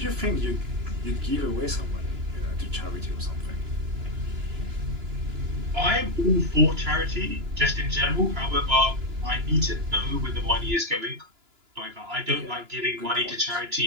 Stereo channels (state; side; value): late; left; 2.9 ms